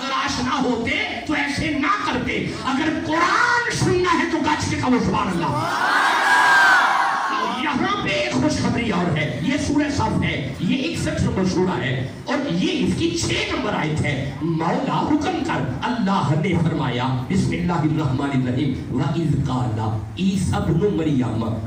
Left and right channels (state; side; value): identical; both; correlation 1.00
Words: آشنا ہوتے تو ایسے نہ کرتے. اگر قرآن سننا ہے تو گچ کے کہو سبحان اللہ. یہاں پہ ایک خوشخبری اور ہے، یہ سورہ صف ہے، یہ 61 نمبر سورہ ہے اور یہ اس کی 6 نمبر آیت ہے. مولا حکم کر، اللہ نے فرمایا بسم اللہ الرحمن الرحیم وَإِذْ قَالَ عیسیٰ ابن مریم،